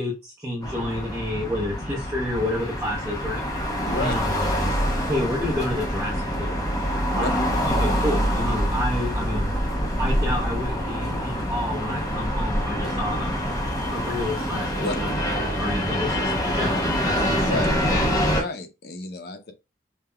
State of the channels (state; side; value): normal; both; correlation 0.61